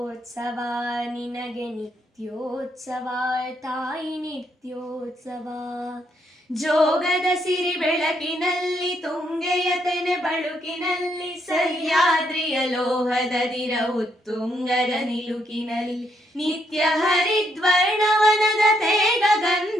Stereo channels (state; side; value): normal; both; correlation 0.75